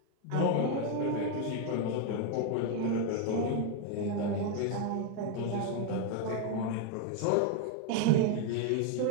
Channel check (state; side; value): different; both; correlation 0.01